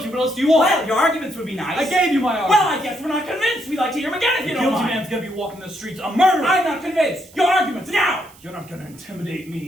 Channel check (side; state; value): right; noise; hiss, 25 dB below the sound